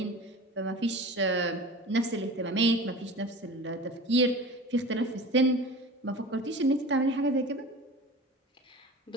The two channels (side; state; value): both; normal; correlation 0.36